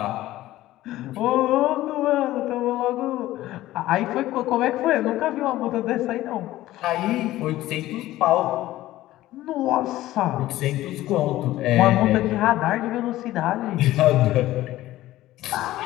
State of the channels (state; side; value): quieter; right; 15.6 dB